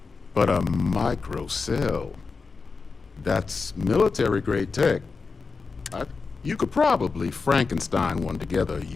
But a microcell, that's military-grade tech. You could probably Frankenstein one together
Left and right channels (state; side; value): quieter; right; 4.6 dB